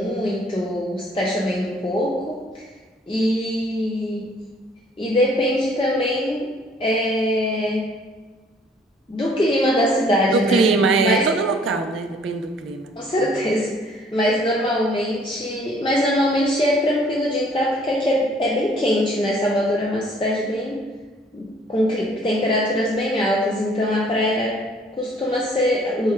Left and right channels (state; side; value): normal; both; correlation 0.59